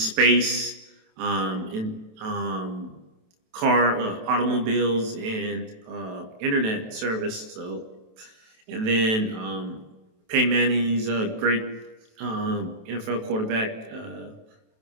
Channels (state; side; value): late; left; 27 ms